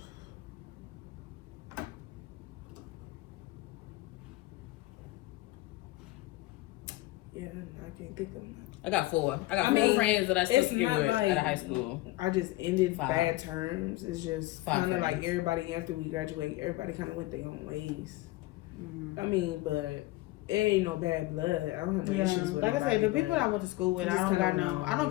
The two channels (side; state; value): right; quieter; 19.2 dB